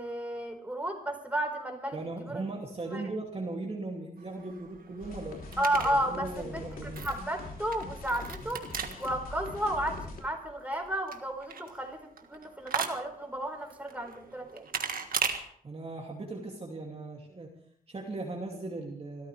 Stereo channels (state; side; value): normal; both; correlation 0.59